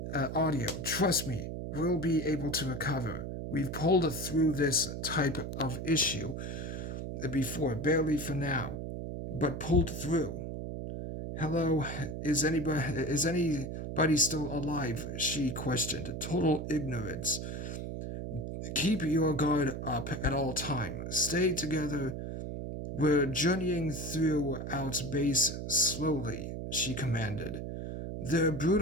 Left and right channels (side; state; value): right; noise; hum, 5 dB below the sound